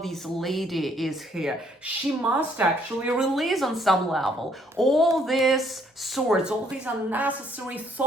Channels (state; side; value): normal; both; correlation 0.66